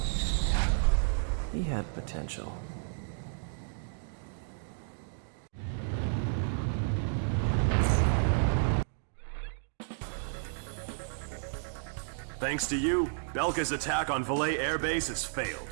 he had potential. Thanks to you, Belka's attack on Valais Air Base has failed.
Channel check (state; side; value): silent; left; digital silence